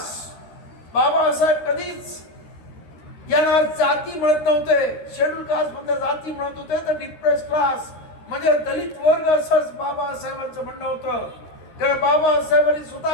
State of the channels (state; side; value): late; right; 13 ms